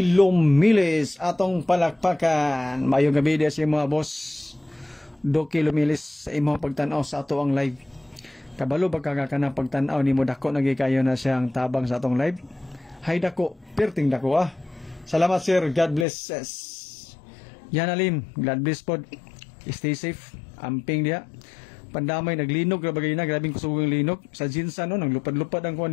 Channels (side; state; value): right; drops out; at 16.1 s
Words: Lumilis atong palakpakan. Mayong gabi dia si mga boss. Duki Lumilis sa imong pagtan-aw sa ato ang live. Kabalo ba ka na pagtan-aw nimo dako nagikayo na siyang tabang sa atong live? Hay dako, perting dako Salamat sir, God bless. Yanalim, God bless pod. Stay safe. Amping dia. Pandamay naglinog ra bagay na, grabing kusugang linog sa Jinsan no, naglupad-lupad ang kuan